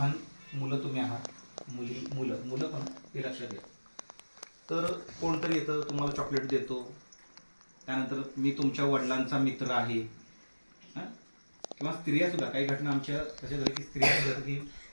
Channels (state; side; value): inverted; both; correlation -1.00